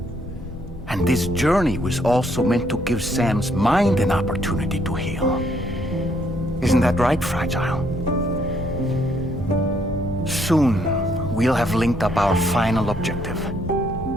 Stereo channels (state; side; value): normal; both; correlation 0.70